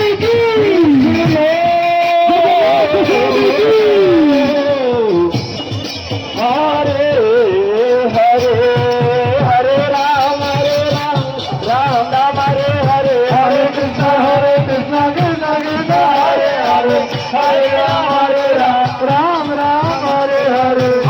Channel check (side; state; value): both; identical; correlation 1.00